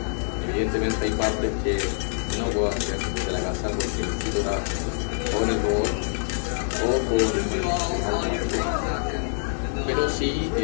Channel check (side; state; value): right; silent; digital silence